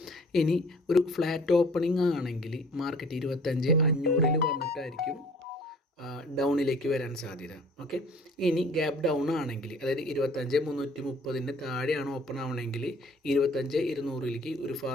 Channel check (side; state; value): both; normal; correlation 0.52